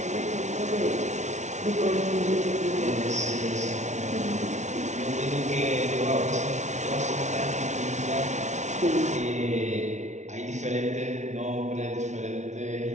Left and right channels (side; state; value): left; late; 0.33 ms